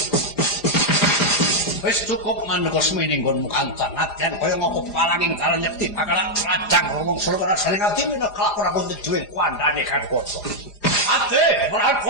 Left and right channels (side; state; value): right; late; 4.9 ms